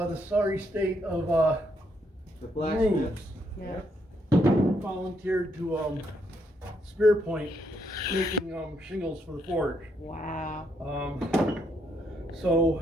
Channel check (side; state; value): both; normal; correlation 0.75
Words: the sorry state of The blacksmiths. Yeah. volunteered to Spear Point making shingles for the forge. Wow.